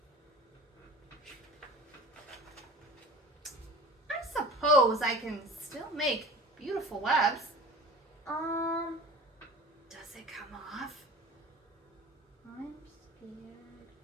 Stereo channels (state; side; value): normal; both; correlation 0.40